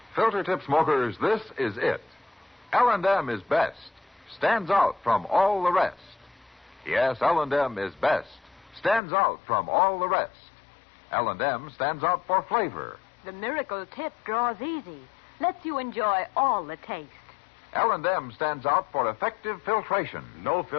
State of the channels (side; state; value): right; drops out; at 9.0 s